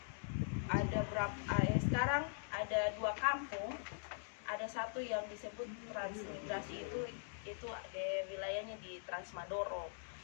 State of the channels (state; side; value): silent; right; digital silence